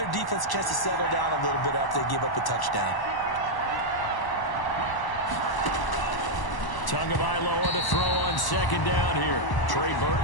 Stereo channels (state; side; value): late; right; 1.0 ms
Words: defense a chance to settle down a little bit after they give up a touchdown. Tagovailoa to throw on second down here. Trey